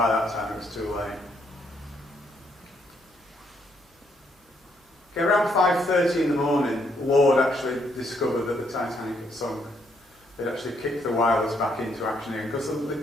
that time it was too late. Okay, around 5:30 in the morning, Lord actually discovered that the Titanic had sunk. They'd actually kicked the wireless back into action again, because the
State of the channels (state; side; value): normal; both; correlation 0.73